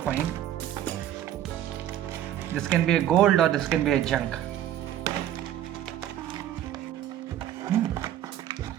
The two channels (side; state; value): left; quieter; 11.7 dB